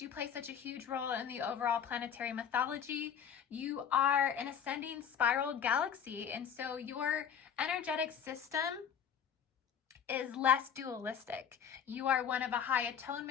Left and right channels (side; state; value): right; quieter; 8.0 dB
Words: you play such a huge role in the overall planetary mythology. You are an ascending spiral galaxy, and so your energetic system is less dualistic. You are one of a high